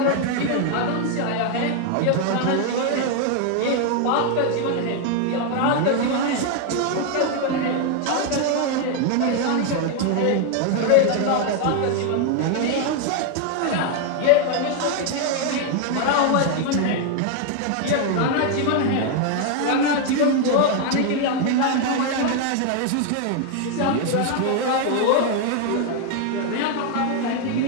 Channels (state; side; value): different; both; correlation 0.01